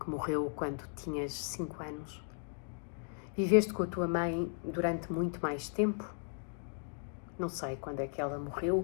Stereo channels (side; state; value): right; silent; 54 dB below the other